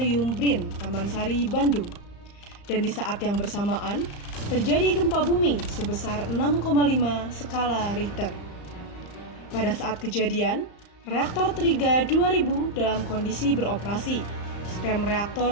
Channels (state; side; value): late; right; 34 ms